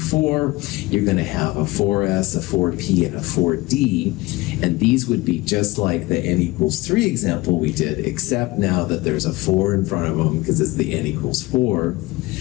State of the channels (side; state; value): right; quieter; 20.8 dB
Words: You're going to have a 4S, a 4P, and a 4D. And these would be just like the n equals 3 example we did, except now that there's a 4 in front of them because it's the n equals 4.